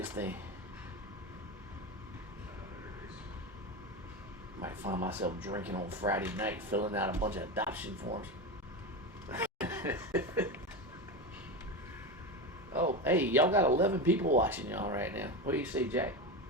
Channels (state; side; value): normal; both; correlation 0.19